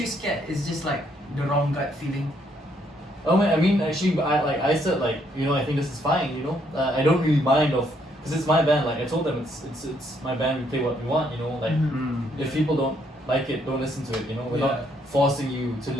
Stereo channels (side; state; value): both; normal; correlation 0.71